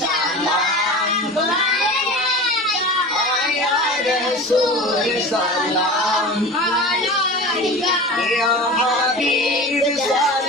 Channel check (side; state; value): both; normal; correlation 0.33